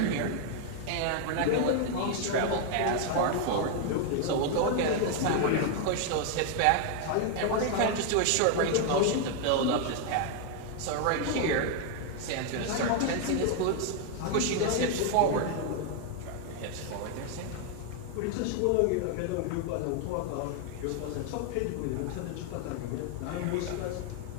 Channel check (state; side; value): different; both; correlation 0.00